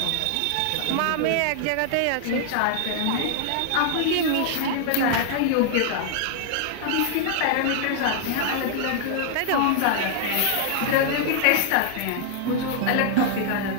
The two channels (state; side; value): different; both; correlation 0.00